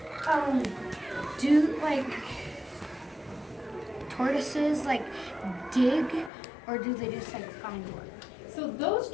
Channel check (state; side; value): drops out; right; at 6.3 s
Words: Do like tortoises like dig, or do they just like find water? So those